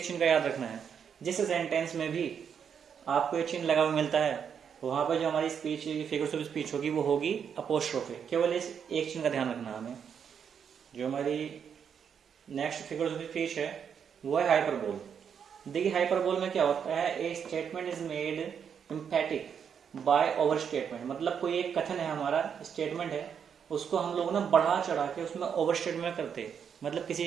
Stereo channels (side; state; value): left; quieter; 7.5 dB